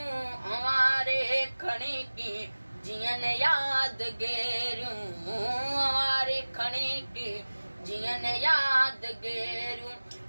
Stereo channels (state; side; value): inverted; both; correlation -1.00